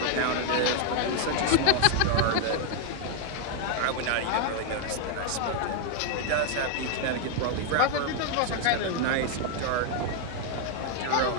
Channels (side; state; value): both; different; correlation 0.00